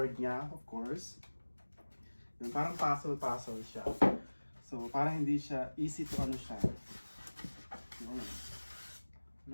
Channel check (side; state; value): both; inverted; correlation -1.00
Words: niya, of course. Yung parang puzzle siya. So parang hindi siya easy to ano siya. Yun.